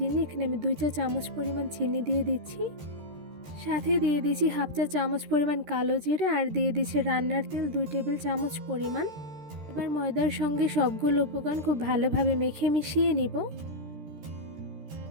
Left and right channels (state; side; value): late; left; 13 ms